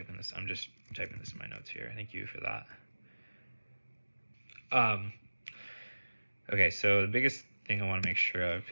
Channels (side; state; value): both; inverted; correlation -1.00